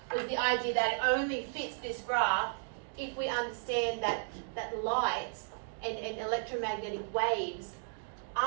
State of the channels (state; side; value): silent; left; digital silence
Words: Was the idea that it only fits this graph if we understand that light and electromagnetic waves